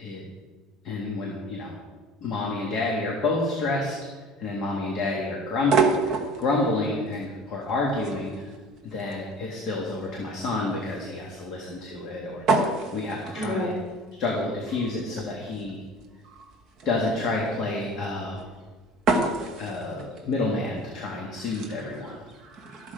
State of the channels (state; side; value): normal; both; correlation 0.43